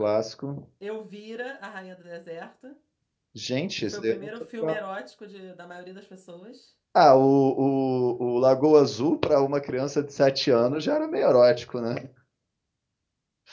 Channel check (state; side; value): identical; both; correlation 1.00